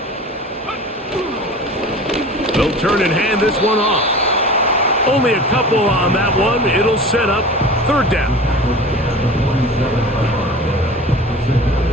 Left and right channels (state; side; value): normal; both; correlation 0.37